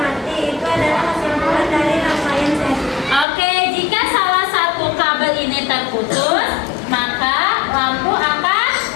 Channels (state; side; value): drops out; right; at 3.2 s